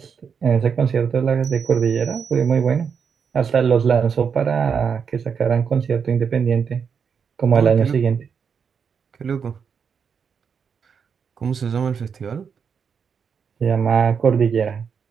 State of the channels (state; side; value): quieter; left; 6.6 dB